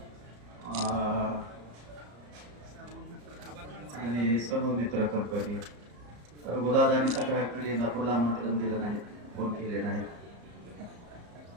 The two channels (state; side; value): late; left; 34 ms